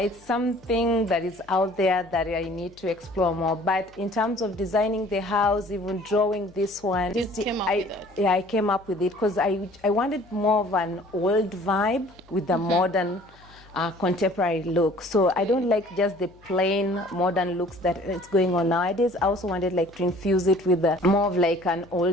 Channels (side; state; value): left; noise; hum, 27 dB below the sound